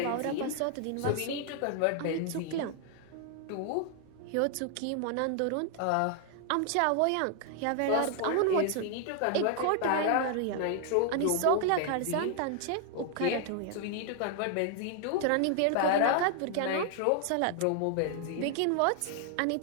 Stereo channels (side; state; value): both; different; correlation 0.00